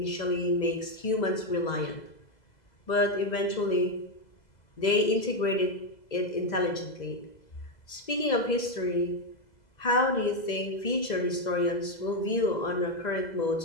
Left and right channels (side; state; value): right; late; 2.0 ms